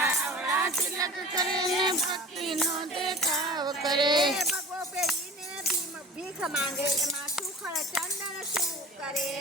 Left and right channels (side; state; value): both; normal; correlation 0.39